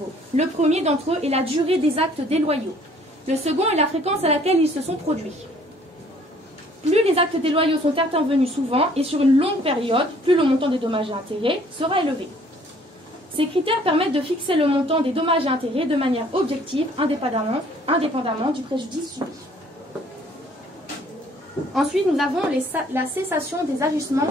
Le premier d'entre eux est la durée des actes déloyaux. Le second est la fréquence à laquelle ils se sont produits. Plus les actes déloyaux sont intervenus souvent et sur une longue période, plus le montant des dommages et intérêts sera élevé. Ces critères permettent de fixer le montant des dommages et intérêts de manière objective, indépendamment du préjudice subi. Ensuite, nous avons la cessation des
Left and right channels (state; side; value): normal; both; correlation 0.58